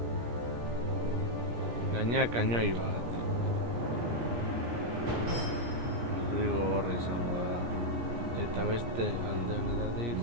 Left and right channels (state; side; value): late; left; 17 ms